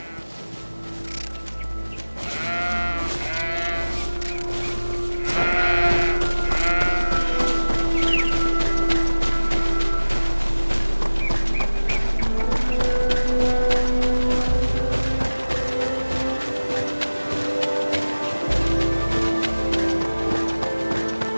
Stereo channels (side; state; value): both; inverted; correlation -1.00